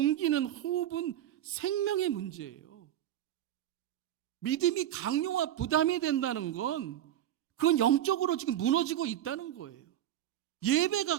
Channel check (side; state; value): left; quieter; 11.9 dB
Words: 호흡은 생명의 문제예요. 믿음이 강요와 부담이 된다는 건 그건 영적으로 지금 무너지고 있다는 거예요.